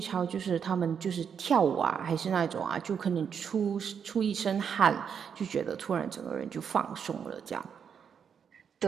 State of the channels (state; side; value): quieter; left; 7.3 dB